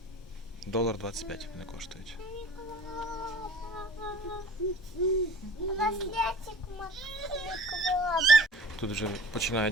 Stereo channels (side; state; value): both; normal; correlation 0.44